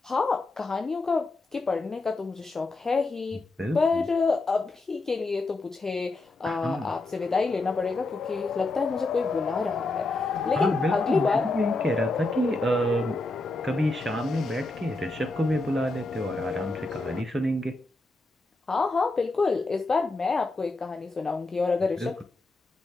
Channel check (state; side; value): quieter; right; 3.0 dB